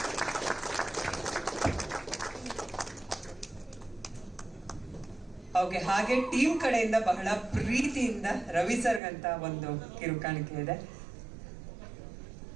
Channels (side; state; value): left; drops out; at 9.0 s